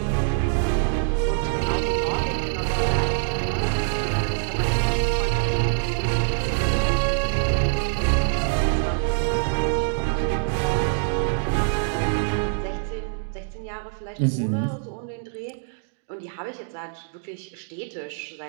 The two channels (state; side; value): silent; left; digital silence